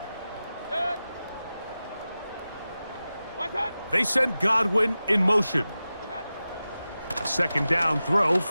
They send Godwin in motion. A 2nd down throw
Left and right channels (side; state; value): both; inverted; correlation -0.94